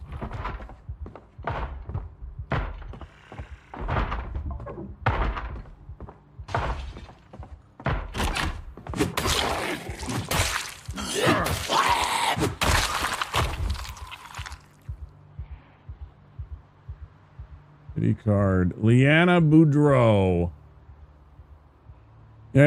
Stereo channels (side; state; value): both; identical; correlation 1.00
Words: card. Leanna Boudreau.